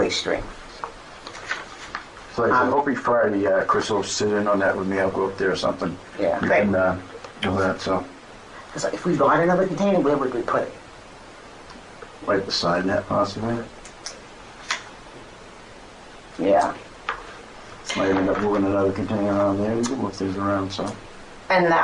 stream. So I'm hoping Friday, Chris will sit in on that with me. I'll go up there or something. Yeah, We great. can do that, so Because if we bought another container, where would we put it? right beside that possibly. Yeah. Might end up moving another container around there. We can move things around, so. And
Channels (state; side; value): identical; both; correlation 1.00